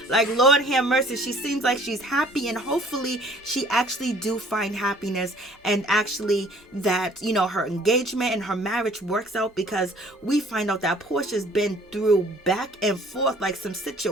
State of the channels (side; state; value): both; normal; correlation 0.55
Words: Like, Lord have mercy. She seems like she's happy, and hopefully she actually do find happiness, and actually that, you know, her engagement and her marriage works out, because we find out that Porsha's been through back and forth like some